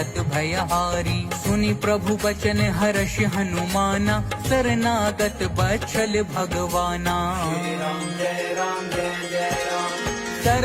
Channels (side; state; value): both; identical; correlation 1.00